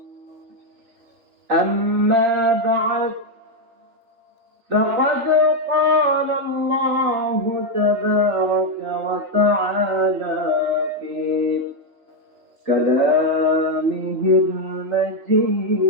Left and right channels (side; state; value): left; late; 3.4 ms